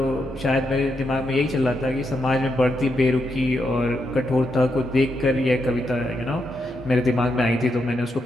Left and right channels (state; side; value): normal; both; correlation 0.82